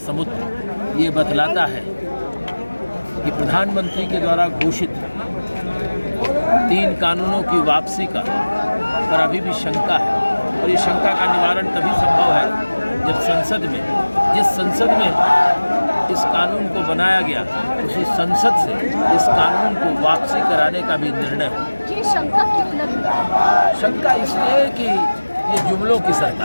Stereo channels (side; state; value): both; inverted; correlation -1.00